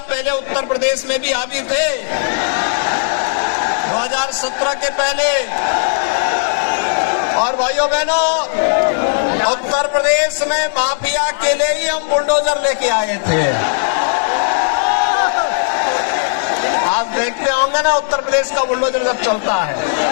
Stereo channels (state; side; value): silent; right; digital silence